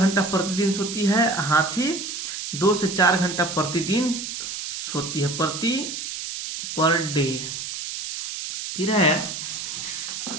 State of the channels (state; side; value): noise; right; hiss, 5 dB below the sound